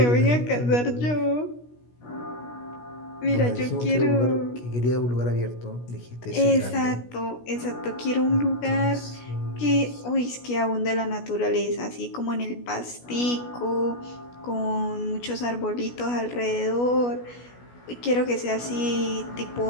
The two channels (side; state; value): right; late; 16 ms